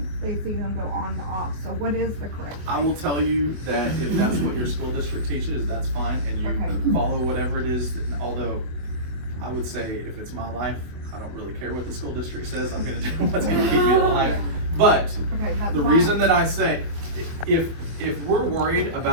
they see them go on and off. So what is the correct? I will tell you that if that's what your school district teaches, that's fine, and you Okay. follow whatever it is. Although, I would say if it's my life, I don't really care what the school district says. I'm gonna do what's gonna keep me alive. But Okay, that's the why- reason that I say, if we're worried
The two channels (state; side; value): late; left; 24 ms